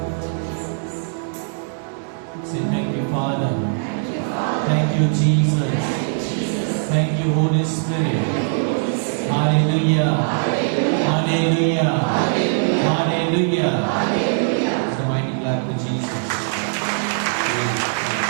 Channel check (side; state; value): left; silent; 65 dB below the other